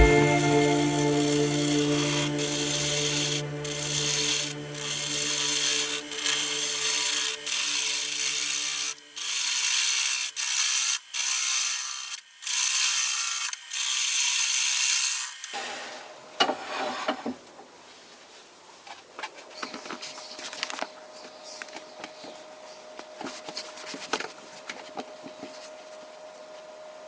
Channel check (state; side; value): identical; both; correlation 1.00